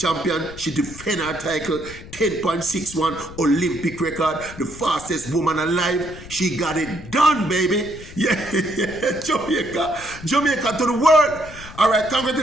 She defended her title, 10.61 Olympic record, the fastest woman alive. She got it done, baby. Yeah, Jamaica to the world. All right,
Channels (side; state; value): left; noise; rumble, 16 dB below the sound